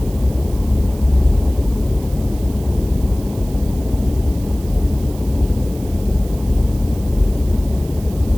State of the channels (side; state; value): right; noise; hiss, 20 dB below the sound